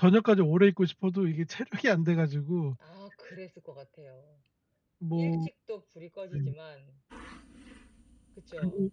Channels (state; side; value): identical; both; correlation 1.00